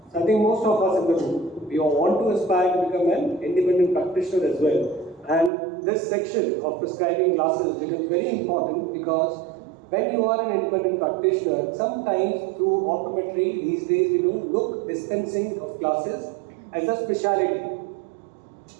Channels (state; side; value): drops out; left; at 5.5 s